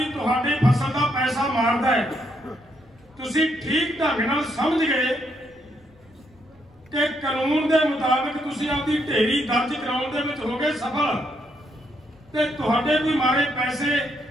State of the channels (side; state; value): left; noise; rumble, 29 dB below the sound